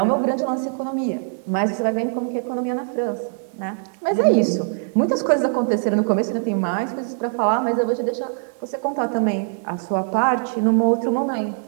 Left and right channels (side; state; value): left; silent; digital silence